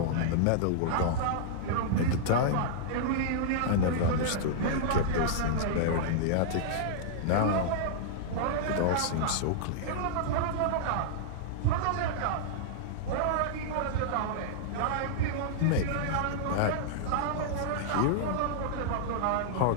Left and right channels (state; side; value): different; both; correlation -0.02